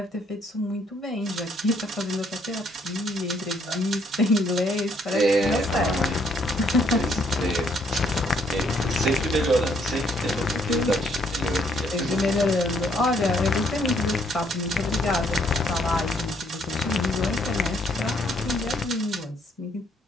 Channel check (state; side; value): normal; both; correlation 0.67